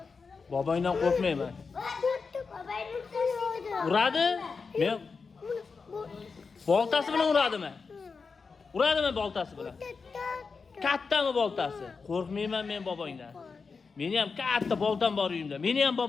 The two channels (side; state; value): right; quieter; 4.9 dB